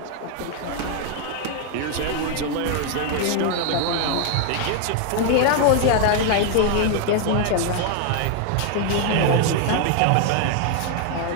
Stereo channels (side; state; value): both; different; correlation 0.00